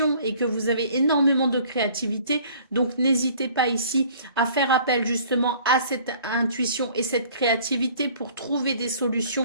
et que vous avez énormément de créativité. Donc, n'hésitez pas ici à faire appel justement à cette intuition et cette créativité pour trouver des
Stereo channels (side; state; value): both; inverted; correlation -0.52